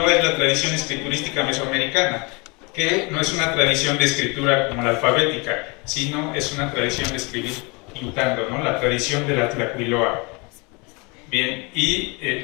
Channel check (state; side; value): quieter; right; 29.1 dB